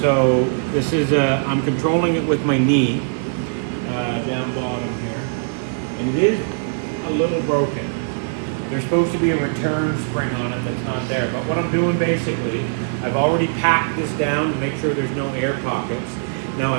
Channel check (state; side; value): silent; left; 59 dB below the other